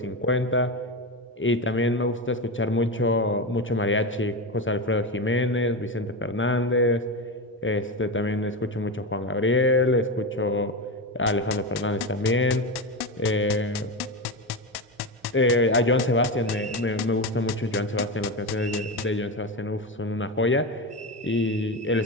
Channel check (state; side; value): normal; both; correlation 0.17